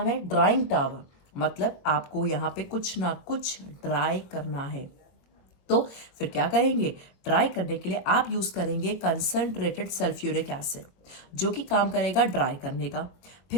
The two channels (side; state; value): right; late; 22 ms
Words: है? Drawing tower. मतलब आपको यहाँ पे कुछ ना कुछ ड्राई करना है। तो फिर क्या करेंगे? ड्राई करने के लिए आप यूज करेंगे कंसंट्रेटेड सल्फ्यूरिक एसिड, जो कि काम करेगा ड्राई करने का।